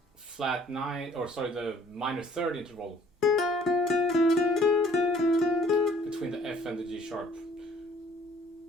flat 9, or sorry, the minor third interval between the F and the G sharp.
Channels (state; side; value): normal; both; correlation 0.57